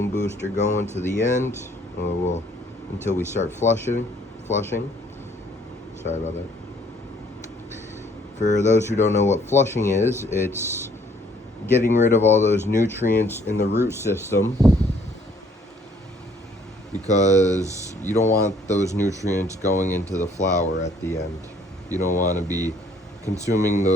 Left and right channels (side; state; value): both; normal; correlation 0.62